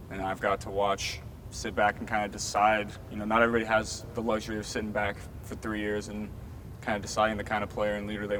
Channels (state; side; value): identical; both; correlation 1.00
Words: and I've got to sit back and kind of decide. Not everybody has the luxury of sitting back for 3 years and kind of deciding the kind of player and leader they